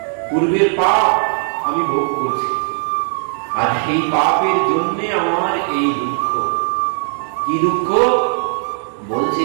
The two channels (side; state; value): left; silent; 57 dB below the other